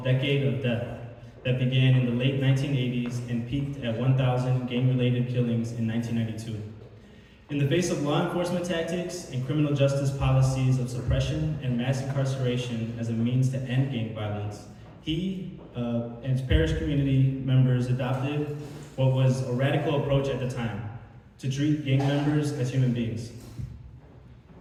Decade of Death that began in the late 1980s and peaked at 1,000 gang-related killings in 1992. In the face of law enforcement tactics and criminal justice policies of suppression and mass incarceration as a means to end gang violence, he and his parish community members adopted what was a radical approach at the time, to treat gang members as human beings.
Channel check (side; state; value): both; identical; correlation 1.00